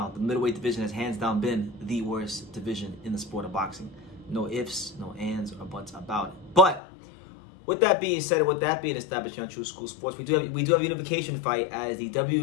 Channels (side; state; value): right; drops out; at 6.8 s